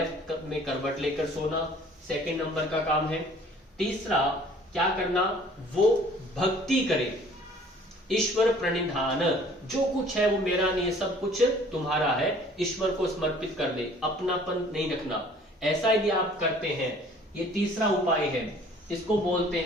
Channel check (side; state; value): both; normal; correlation 0.53